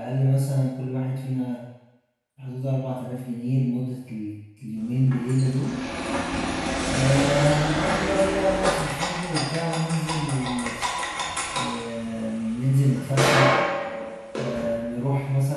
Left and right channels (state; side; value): identical; both; correlation 1.00